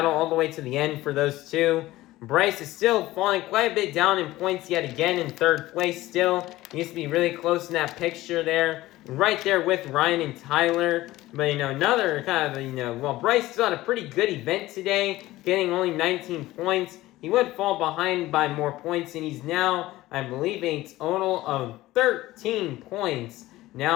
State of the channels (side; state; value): right; quieter; 17.1 dB